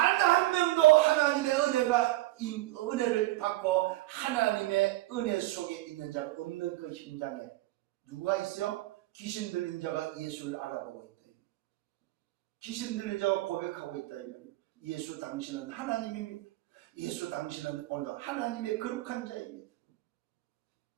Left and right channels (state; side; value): quieter; left; 18.2 dB